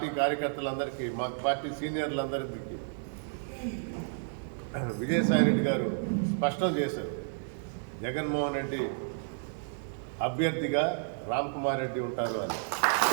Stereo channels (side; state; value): left; silent; digital silence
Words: కార్యకర్తలందరికీ, మా పార్టీ సీనియర్లందరికీ విజయసాయిరెడ్డి గారు స్పష్టం చేశారు, జగన్మోహన్ రెడ్డి అభ్యర్థిగా రామ్ కుమార్ రెడ్డి ఉంటారు అని.